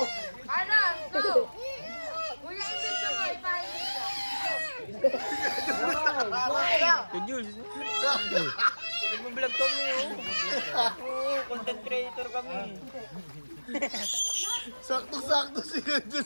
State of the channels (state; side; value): inverted; both; correlation -1.00